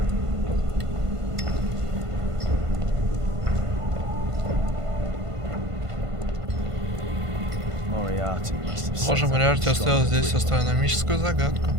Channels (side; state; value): left; late; 1.5 ms